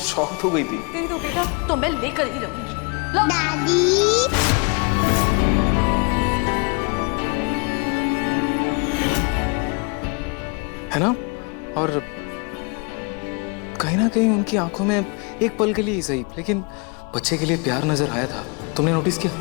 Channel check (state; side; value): quieter; right; 32.8 dB